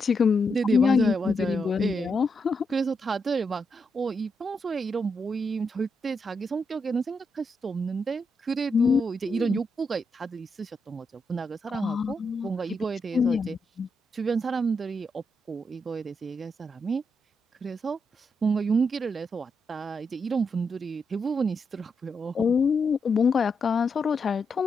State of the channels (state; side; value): normal; both; correlation 0.82